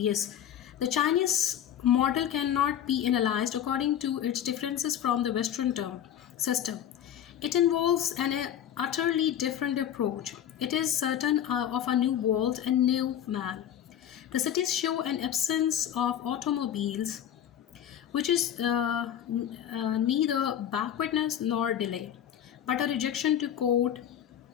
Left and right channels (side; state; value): right; quieter; 10.1 dB